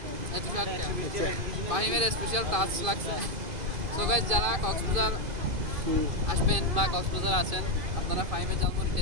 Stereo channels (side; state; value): left; late; 2.5 ms